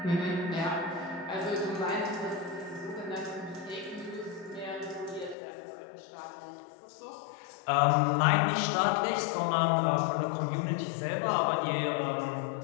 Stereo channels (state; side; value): drops out; right; at 5.4 s